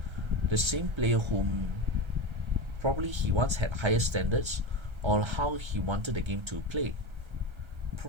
the same player whom probably he once had higher standards on how he wanted the game to play.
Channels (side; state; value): left; late; 1.3 ms